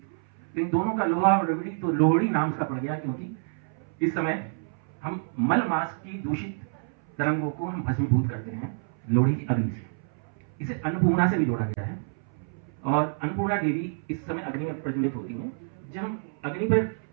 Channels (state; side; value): silent; left; 59 dB below the other